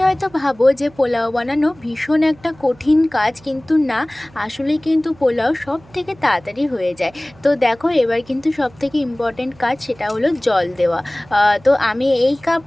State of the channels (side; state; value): right; noise; hum, 26 dB below the sound